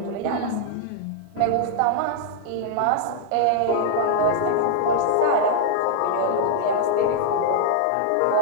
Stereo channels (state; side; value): different; both; correlation -0.01